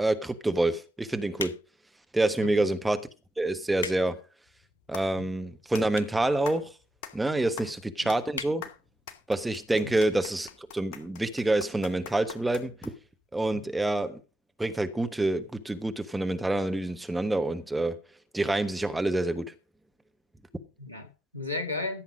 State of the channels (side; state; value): both; normal; correlation 0.87